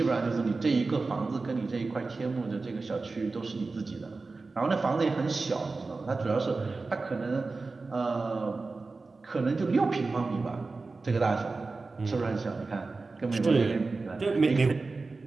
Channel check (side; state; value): left; quieter; 3.8 dB